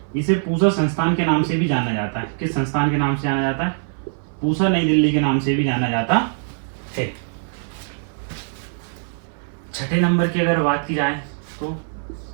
इसे पूसा संस्थान के नाम से भी जाना जाता है। किस संस्थान के नाम से जाना जाता है? पूसा नई दिल्ली के नाम से भी जाना जाता है। छठे नंबर की अगर बात की जाए तो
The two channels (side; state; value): left; silent; 58 dB below the other